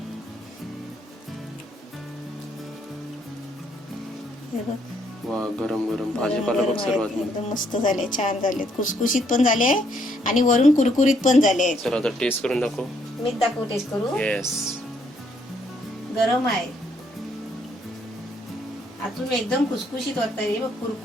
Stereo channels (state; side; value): normal; both; correlation 0.70